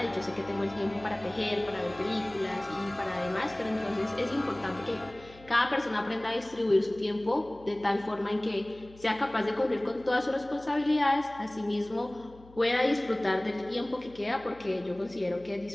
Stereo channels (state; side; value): noise; left; hum, 23 dB below the sound